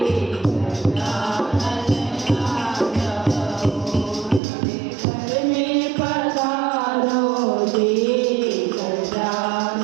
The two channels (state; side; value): drops out; left; at 4.4 s